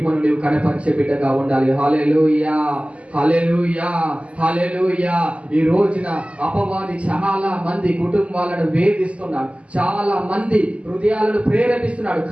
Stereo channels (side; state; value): left; late; 0.061 ms